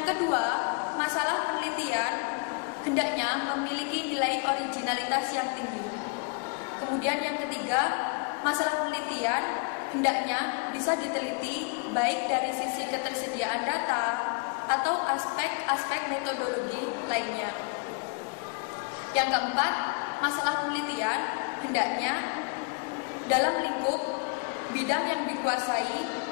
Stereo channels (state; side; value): quieter; right; 33.5 dB